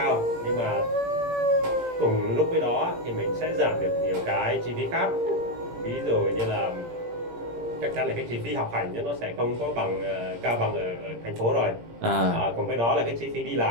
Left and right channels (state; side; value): late; left; 17 ms